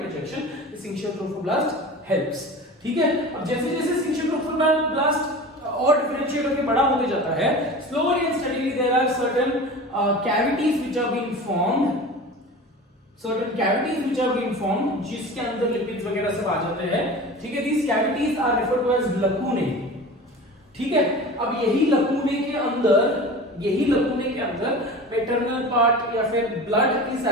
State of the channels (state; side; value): normal; both; correlation 0.35